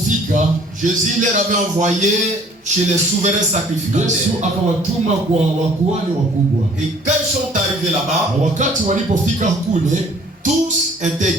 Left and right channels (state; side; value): normal; both; correlation 0.55